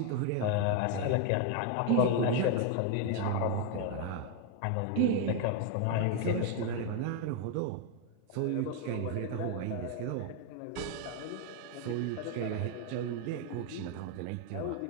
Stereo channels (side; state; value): both; different; correlation 0.01